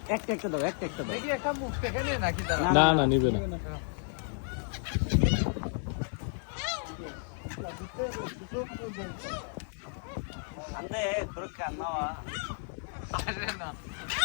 একটা একটা দাও একটা একটা দাও দেখি একটা মুখ থেকে নে নাকি তারা না না নিবে না আন্দে তোর কান্নাওয়া আসে না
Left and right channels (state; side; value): silent; right; 56 dB below the other